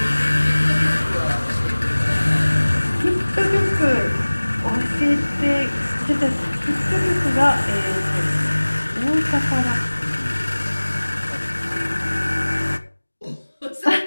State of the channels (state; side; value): inverted; both; correlation -1.00